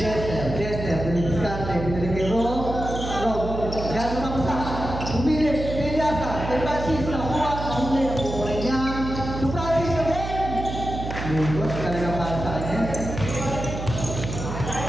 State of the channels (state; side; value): noise; right; hum, 6 dB below the sound